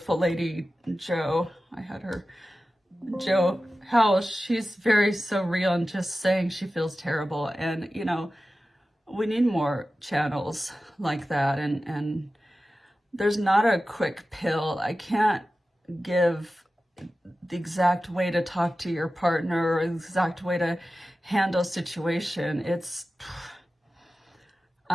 lady, Jo, I had her, Jo Howell, she's very so real and just saying she feels terrible. And, you know, we need more channels like that. And there's not a quick pill. I can't give the exact way to talk to your partner or the exact way to handle a situation. It's,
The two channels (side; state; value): both; normal; correlation 0.94